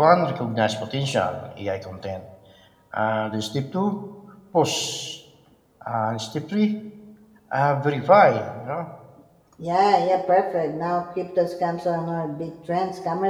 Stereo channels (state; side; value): identical; both; correlation 1.00